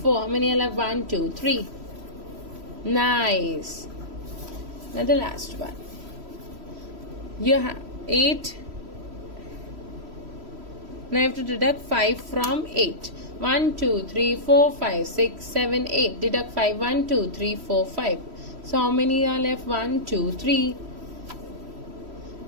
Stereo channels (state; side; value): late; left; 3.1 ms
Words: How many are left? 1, 2, 3. Nice. Now the last one. You have 8. Now you have to deduct 5 from 8. 1, 2, 3, 4, 5, 6, 7, 8. Deduct 5. 1, 2, 3, 4, 5. So how many are left? 1, 2, 3.